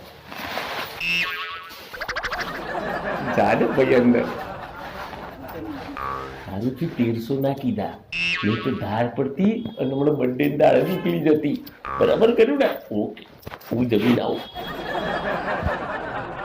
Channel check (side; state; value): both; identical; correlation 1.00